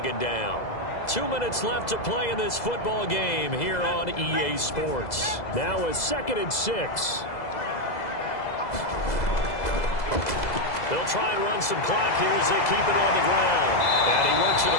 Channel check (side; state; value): right; late; 2.0 ms